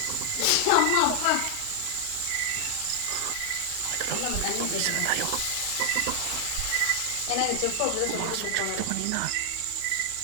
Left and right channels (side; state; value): both; different; correlation 0.00